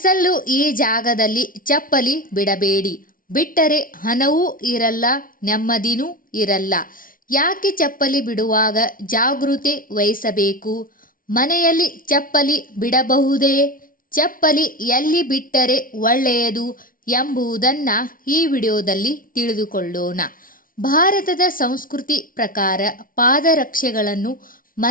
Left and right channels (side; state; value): right; late; 0.40 ms